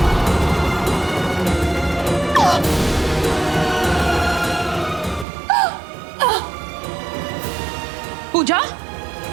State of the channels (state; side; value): drops out; left; at 5.2 s